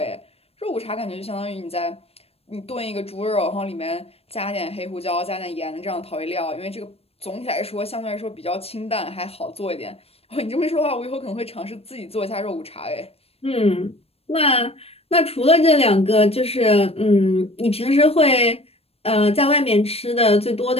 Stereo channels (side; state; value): right; late; 0.29 ms